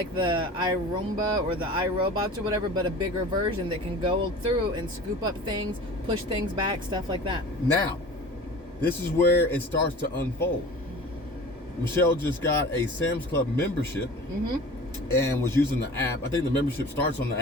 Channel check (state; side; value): normal; both; correlation 0.40